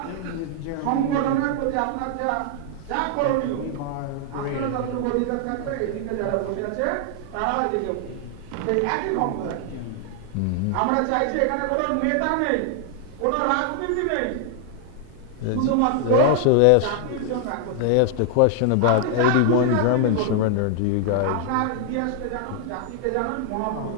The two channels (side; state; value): both; different; correlation 0.00